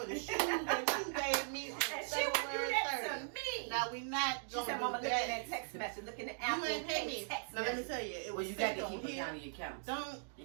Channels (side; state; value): left; silent; digital silence